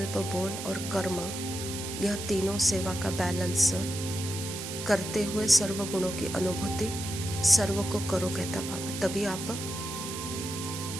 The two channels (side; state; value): right; noise; hiss, 7 dB below the sound